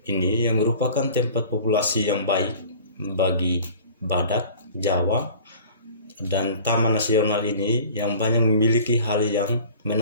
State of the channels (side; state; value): both; inverted; correlation -0.45